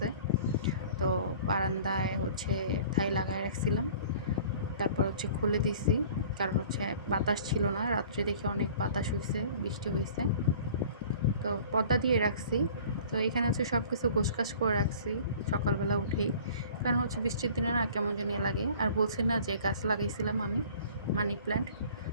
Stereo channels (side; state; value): both; inverted; correlation -0.47